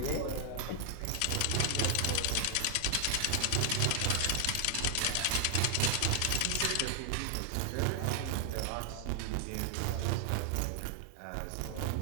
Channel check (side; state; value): both; different; correlation 0.00